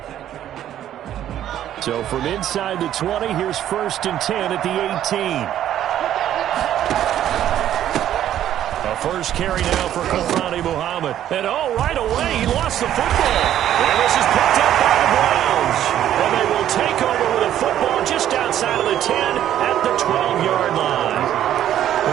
So from inside the 20, here's 1st and 10 at the 18. First carry now for Kofrani Muhammad. And right away, he lost the football. And this is picked up by the Browns. And they will take over with a football just outside of the 10 at the 12-yard line.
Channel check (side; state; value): left; quieter; 11.4 dB